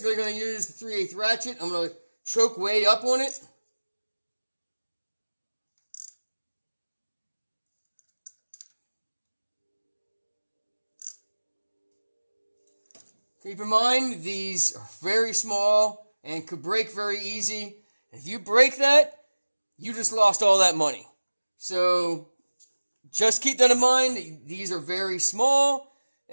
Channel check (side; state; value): both; inverted; correlation -1.00